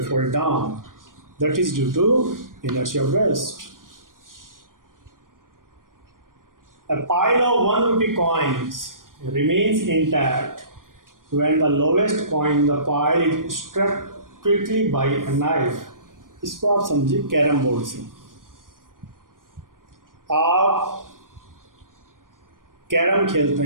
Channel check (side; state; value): left; late; 0.90 ms